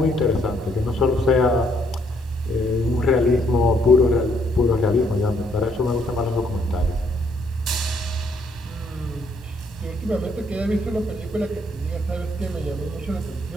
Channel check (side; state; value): both; normal; correlation 0.70